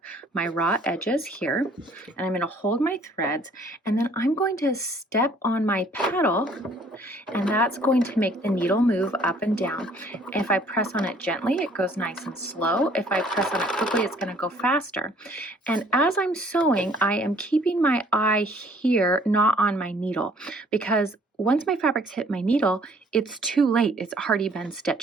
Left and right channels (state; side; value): normal; both; correlation 0.59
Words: my raw edges here, and I'm going to hold my threads, and then I'm going to step on my pedal, and that's going to make the needle move up and down. If I press on it gently, it goes nice and slow. If I press on it quickly, it's going to go faster. And as I'm sewing, I am keeping my eye here, not on my needle, because once my fabrics hit my needle, it's too late. It's already been